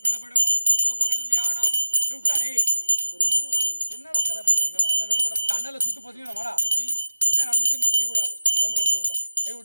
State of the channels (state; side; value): inverted; both; correlation -0.93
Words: லோக கல்யாணம் விட்டாரே என்னடா கதை பண்றீங்க? அண்ணன் வேறுபட அண்ணல சுத்து பசங்க மாடா சித்தி என்ன நடந்துச்சுன்னு தெரியக்கூடாது. ஹோம் கொண்டு உள்ளோம் கை